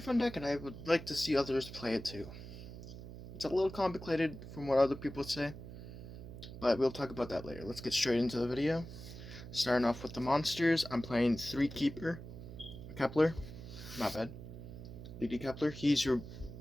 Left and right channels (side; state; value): right; noise; hum, 12 dB below the sound